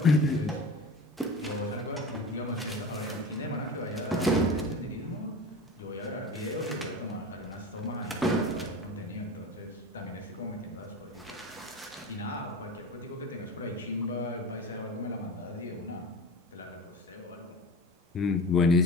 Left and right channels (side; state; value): both; normal; correlation 0.32